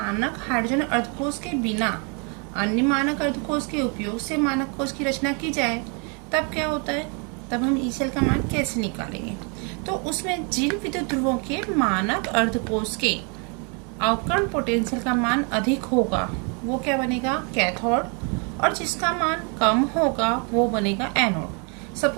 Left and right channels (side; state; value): left; quieter; 35.8 dB